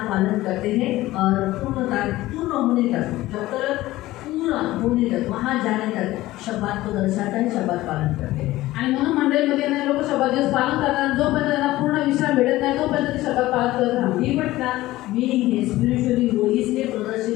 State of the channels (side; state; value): right; quieter; 17.0 dB